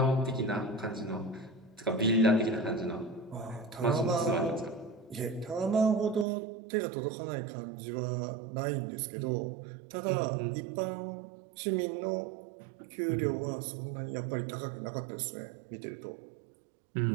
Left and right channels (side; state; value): left; drops out; at 6.2 s